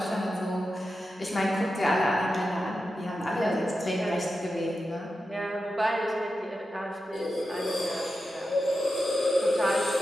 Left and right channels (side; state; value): both; normal; correlation 0.90